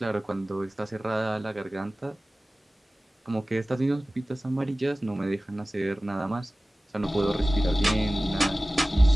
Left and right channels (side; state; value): both; normal; correlation 0.97